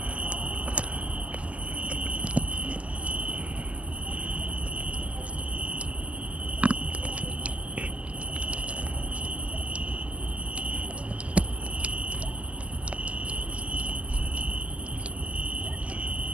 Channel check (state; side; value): late; left; 0.062 ms